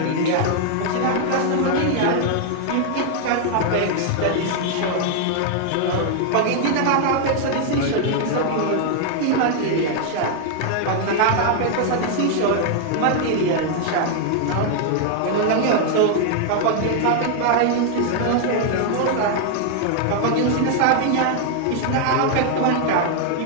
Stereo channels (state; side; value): different; both; correlation 0.00